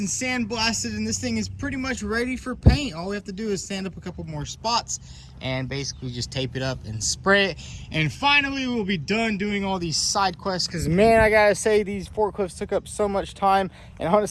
sandblasted, and this thing is pretty much ready for paint. All we have to do is sand up a couple more spots and basically just tape it up and spray it. And finally, we'll be done doing all these side quests, because man, I gotta say, these forklifts took up so much time, and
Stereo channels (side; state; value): both; identical; correlation 1.00